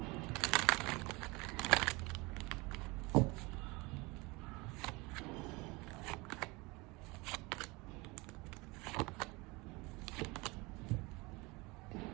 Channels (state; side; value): quieter; left; 24.8 dB